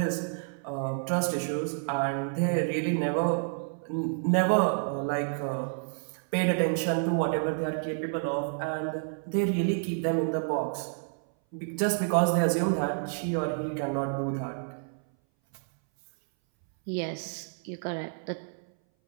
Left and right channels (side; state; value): left; silent; 58 dB below the other